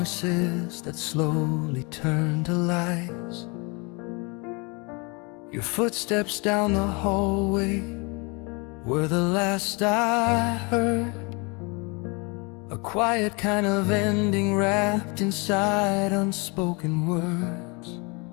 that slowly turned to lies. Your footsteps down the hallway were the last I heard, a quiet kind of ending wrapped inside unspoken words.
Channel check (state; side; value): quieter; right; 30.1 dB